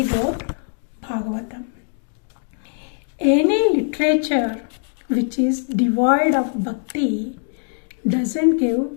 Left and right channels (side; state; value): right; silent; 60 dB below the other